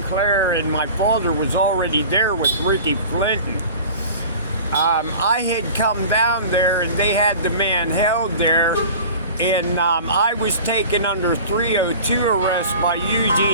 and my father was already there with Ric Flitton. I had come down there, and they had the man held there, and I was taken under 302 arrest by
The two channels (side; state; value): both; inverted; correlation -0.40